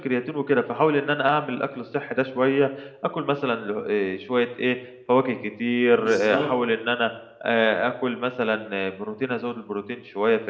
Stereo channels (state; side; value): identical; both; correlation 1.00